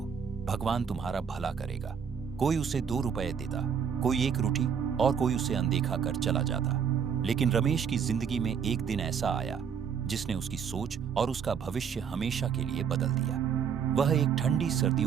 भगवान तुम्हारा भला करेगा। कोई उसे 2 रुपए देता, कोई 1 रोटी और कोई उसे अनदेखा कर चला जाता। लेकिन रमेश की जिंदगी में एक दिन ऐसा आया जिसने उसकी सोच और उसका भविष्य हमेशा के लिए बदल दिया। वह एक ठंडी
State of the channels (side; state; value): left; quieter; 7.3 dB